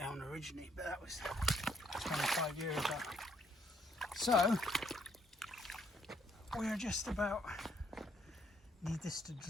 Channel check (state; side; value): normal; both; correlation 0.69